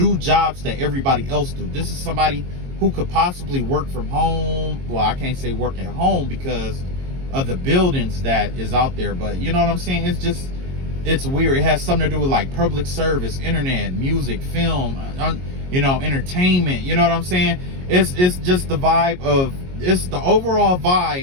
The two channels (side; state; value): left; late; 22 ms